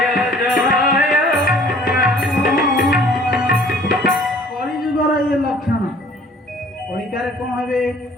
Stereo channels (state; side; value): normal; both; correlation 0.53